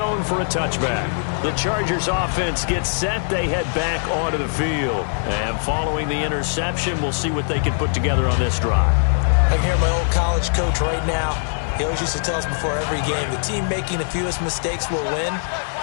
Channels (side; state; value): right; silent; digital silence